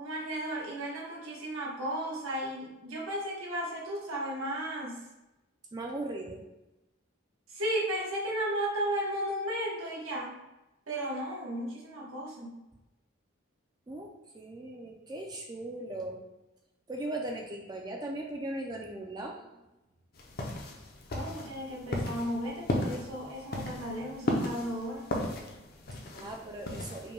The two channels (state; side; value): normal; both; correlation 0.31